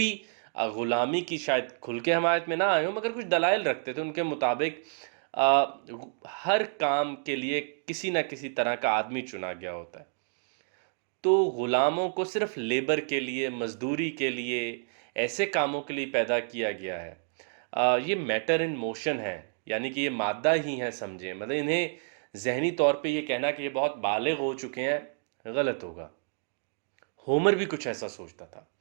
غلامی کی شاید کھل کے حمایت میں نہ آئے ہوں مگر کچھ دلائل رکھتے تھے۔ ان کے مطابق ہر کام کے لیے کسی نہ کسی طرح کا آدمی چنا گیا ہوتا ہے، تو غلاموں کو صرف لیبر کے لیے، مزدوری کے لیے، ایسے کاموں کے لیے پیدا کیا گیا ہے۔ یہ میٹر ان موشن ہے، یعنی کہ یہ مادہ ہی ہے سمجھیں، مطلب انہیں ذہنی طور پہ یہ کہنا کہ یہ بہت بالغ ہو چکے ہیں غلط ہوگا۔ ہومر بھی کچھ ایسا سوچتا تھا۔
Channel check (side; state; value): left; silent; digital silence